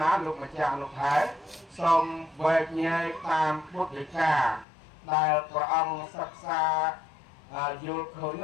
lục mà chàng lục thái xong về nhai tam bút để cả đại của ông sắc xa vô khởi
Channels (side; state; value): right; drops out; at 4.7 s